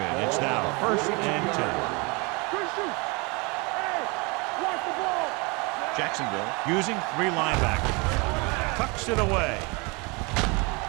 it's now first and 10. Jacksonville using 3 linebackers. Tucks it away.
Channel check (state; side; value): quieter; left; 28.8 dB